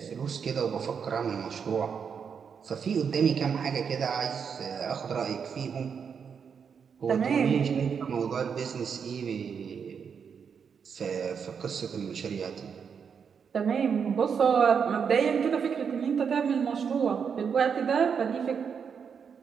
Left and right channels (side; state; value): left; quieter; 6.7 dB